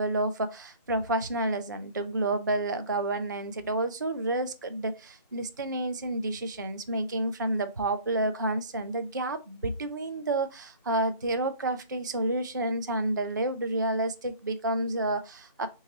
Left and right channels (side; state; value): both; inverted; correlation -0.48